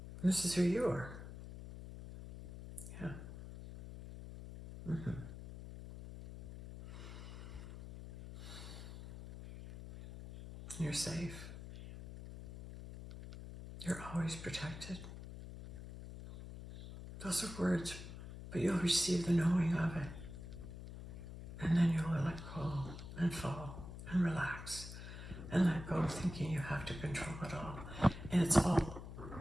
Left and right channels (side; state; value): left; noise; hum, 11 dB below the sound